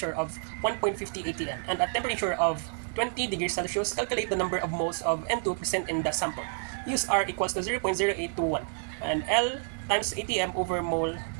of 1.50 atm and a temperature of 20 degrees Celsius. Calculate the number of moles of N2 present in the sample. Use R equals to 0.0821 and L times atm over mole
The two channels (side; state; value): left; silent; 58 dB below the other